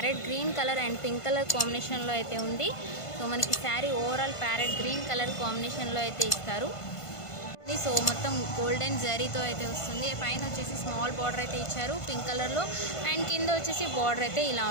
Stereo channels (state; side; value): late; right; 1.5 ms